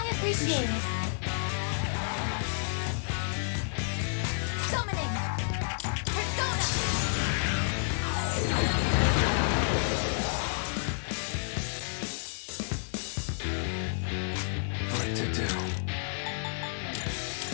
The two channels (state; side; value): silent; right; 58 dB below the other